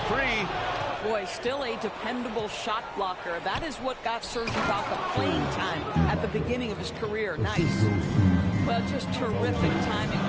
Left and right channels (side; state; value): both; identical; correlation 1.00